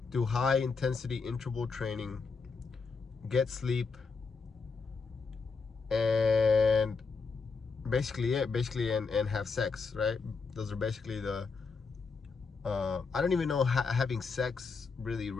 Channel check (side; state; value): right; quieter; 4.7 dB